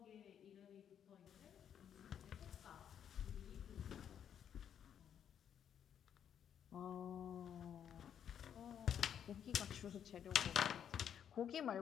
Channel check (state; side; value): quieter; right; 8.9 dB